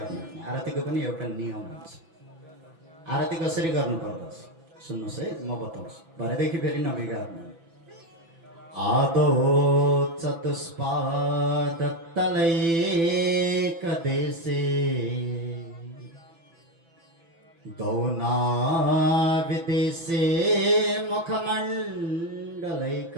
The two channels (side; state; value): left; late; 6.0 ms